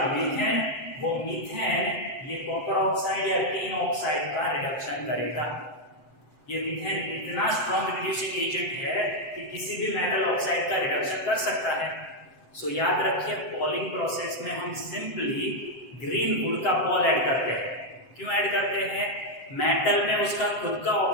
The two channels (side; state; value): right; late; 7.8 ms